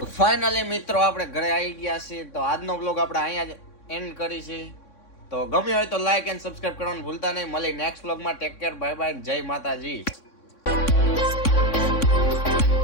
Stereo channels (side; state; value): right; late; 3.6 ms